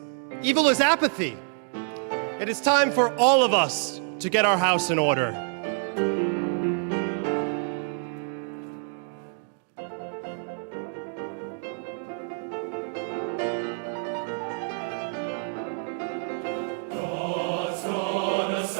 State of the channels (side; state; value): left; silent; 60 dB below the other